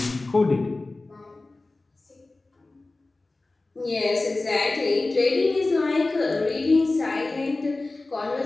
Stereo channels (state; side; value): quieter; right; 3.2 dB